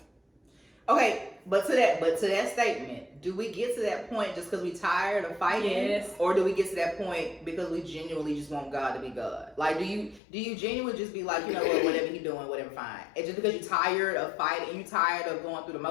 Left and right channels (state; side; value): drops out; right; at 10.2 s